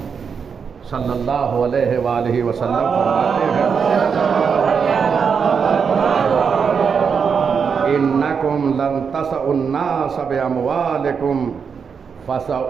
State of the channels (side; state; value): left; quieter; 6.3 dB